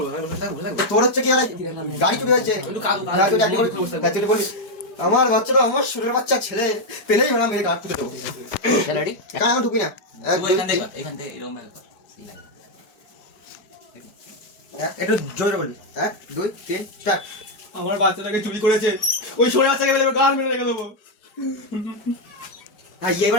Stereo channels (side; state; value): right; late; 4.8 ms